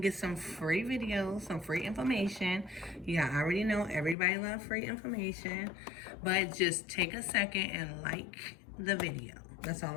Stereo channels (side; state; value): right; drops out; at 4.2 s